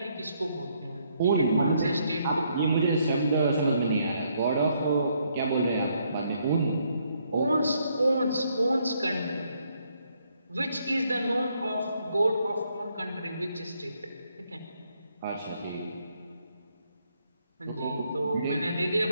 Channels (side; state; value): both; inverted; correlation -0.72